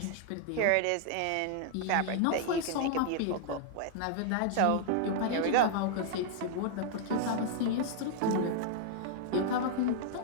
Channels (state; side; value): different; both; correlation 0.00